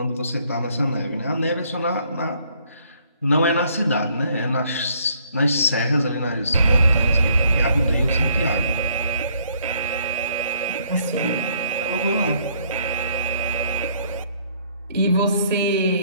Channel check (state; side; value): inverted; both; correlation -0.65